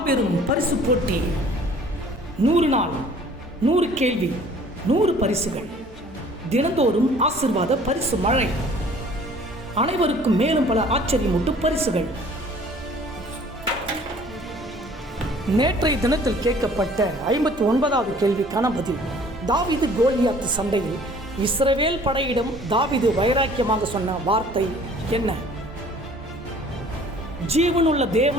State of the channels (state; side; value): normal; both; correlation 0.52